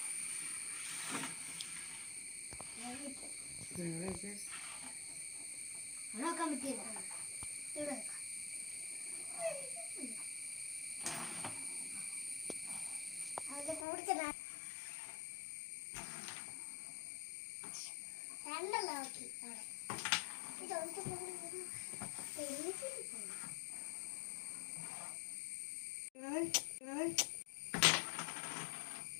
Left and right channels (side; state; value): right; drops out; at 13.9 s